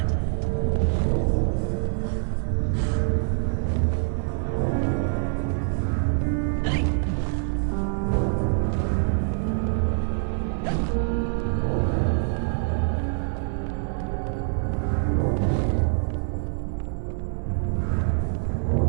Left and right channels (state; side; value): silent; left; 56 dB below the other